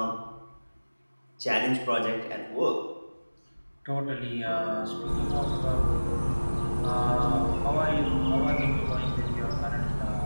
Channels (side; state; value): both; inverted; correlation -1.00